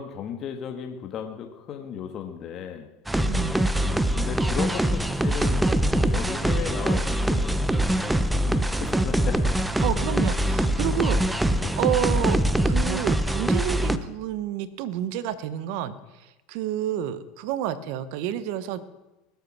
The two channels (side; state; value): both; normal; correlation 0.76